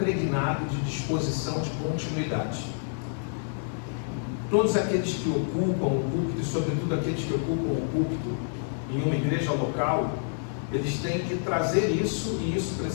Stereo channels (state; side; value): silent; right; digital silence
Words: de disposição de continuidade. Todos aqueles que ocupam o púlpito, e sobretudo aqueles que ocupam o púlpito em uma igreja local, eles têm que trazer isso, e isso